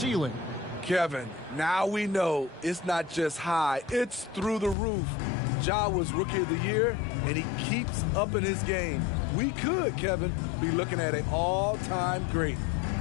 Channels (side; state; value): right; drops out; at 4.8 s